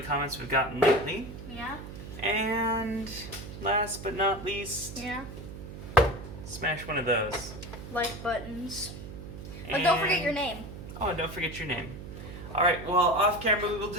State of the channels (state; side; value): noise; right; hum, 11 dB below the sound